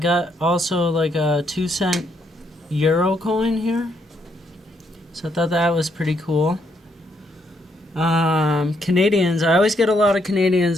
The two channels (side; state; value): both; normal; correlation 0.74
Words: also like a 2-cent euro coin here. So I thought that was pretty cool. Canadians. I always get a lot of